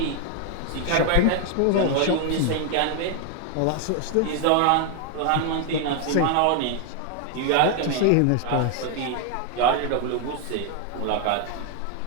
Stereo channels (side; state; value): both; different; correlation 0.01